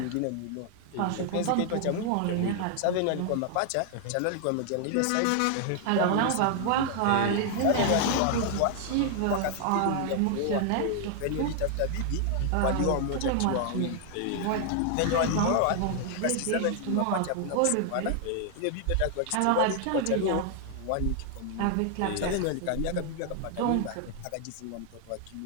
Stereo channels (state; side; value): different; both; correlation 0.00